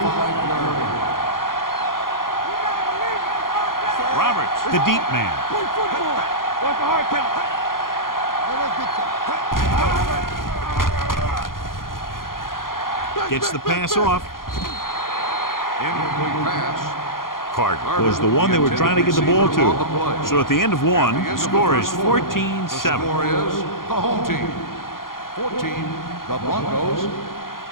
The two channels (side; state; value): right; late; 0.91 ms